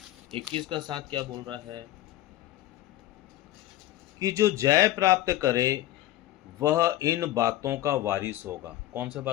21 का 7 क्या बोल रहा है कि जो जय प्राप्त करे वह इन बातों का वारिस होगा। कौन से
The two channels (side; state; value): right; quieter; 14.9 dB